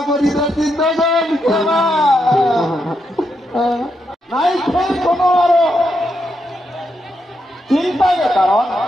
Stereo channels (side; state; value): both; normal; correlation 0.82